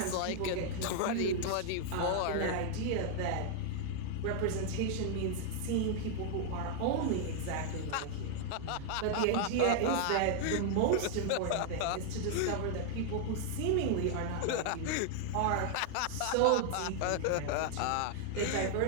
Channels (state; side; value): different; both; correlation 0.00